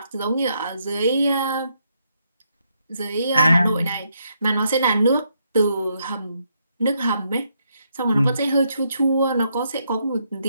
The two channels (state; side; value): inverted; both; correlation -0.77